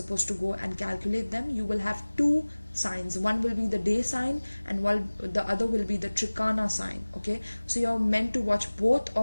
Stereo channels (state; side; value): inverted; both; correlation -1.00